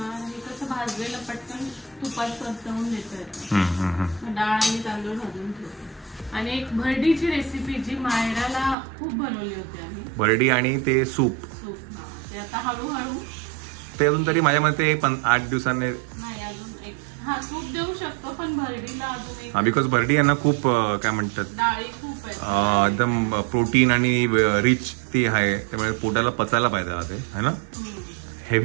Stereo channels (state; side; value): drops out; left; at 8.8 s